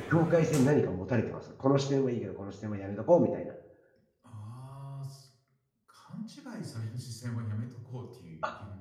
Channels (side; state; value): both; identical; correlation 1.00